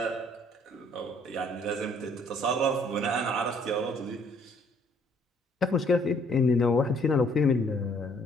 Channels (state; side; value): normal; both; correlation 0.63